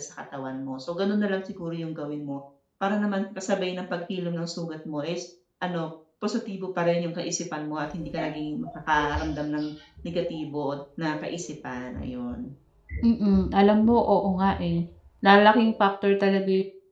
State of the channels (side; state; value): both; identical; correlation 1.00